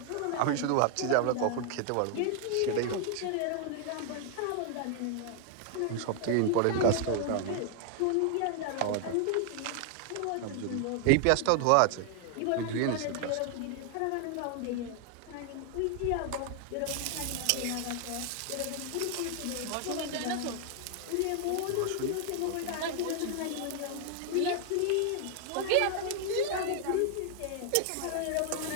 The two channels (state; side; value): different; both; correlation 0.00